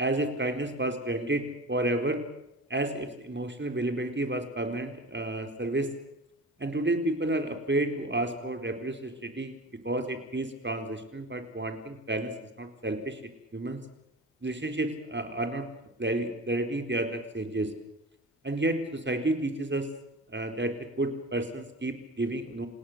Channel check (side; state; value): both; normal; correlation 0.33